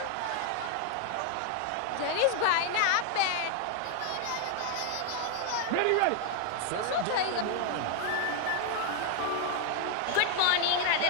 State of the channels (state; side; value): different; both; correlation 0.00